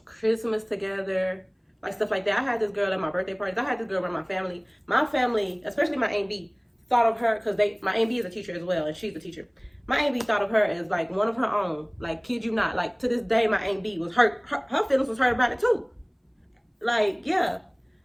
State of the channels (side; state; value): both; identical; correlation 1.00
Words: Christmas together, like stuff like that. I had this girl at my birthday parties. I had this girl around my family. My family, especially my Aunt B, thought of her because my Aunt B is a teacher as well, and she's a teacher. My Aunt B thought of her as like one of her own. Like, kid you not. Like, to this day, my Aunt B was hurt. Her feelings was hurt about it too. Like, yeah.